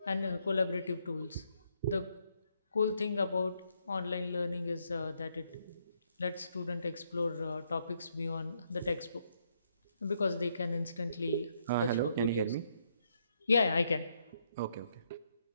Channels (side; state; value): both; inverted; correlation -0.75